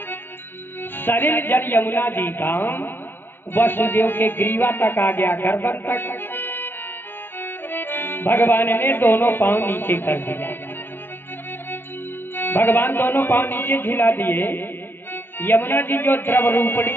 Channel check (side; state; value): right; late; 0.098 ms